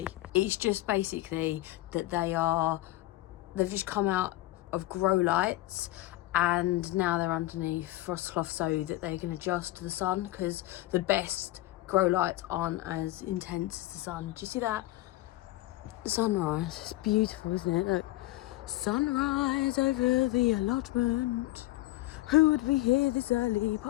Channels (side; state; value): right; quieter; 17.3 dB